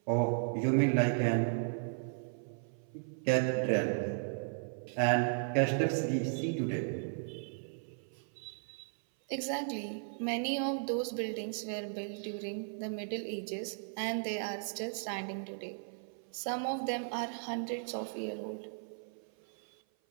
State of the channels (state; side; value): silent; left; 54 dB below the other